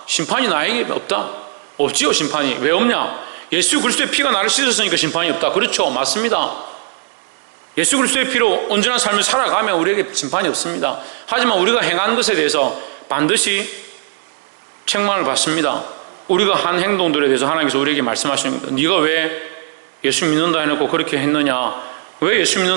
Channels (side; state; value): left; silent; digital silence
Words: 심판이 나에게 없다. 없지요, 심판이. 왜 없냐? 예수 그리스도의 피가 나를 씻었으니까 심판이 없다. 그렇죠, 맞습니다. 예수 그리스도의 피로 온전한 삶을 살아가면 우리에게 심판이 없습니다. 하지만 우리가 행한 것에 대해서 반드시 책망을 받습니다. 우리가 한 행동들에 대해서 하나님께서 우리에게 말씀하시는 겁니다. 네가 왜 예수 믿는다 해놓고 그렇게 했느냐? 왜 예수